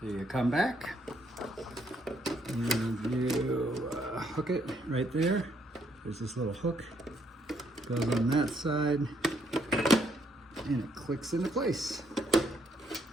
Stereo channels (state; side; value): normal; both; correlation 0.72